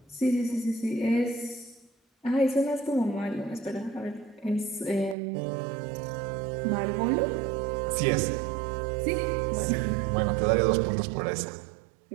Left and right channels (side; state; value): left; drops out; at 5.2 s